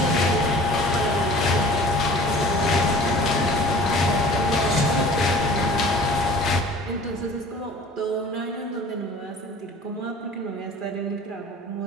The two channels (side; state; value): both; normal; correlation 0.45